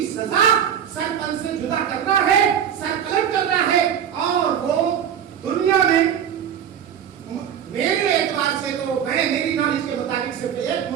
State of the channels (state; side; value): quieter; left; 9.0 dB